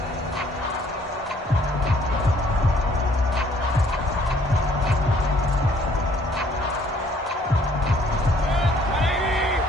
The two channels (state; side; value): normal; both; correlation 0.61